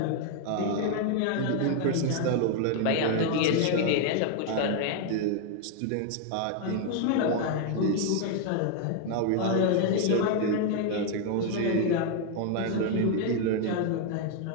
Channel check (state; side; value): different; both; correlation 0.00